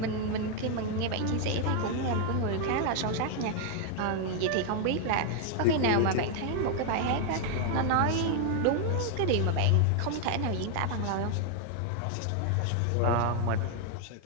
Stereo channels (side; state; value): both; different; correlation 0.00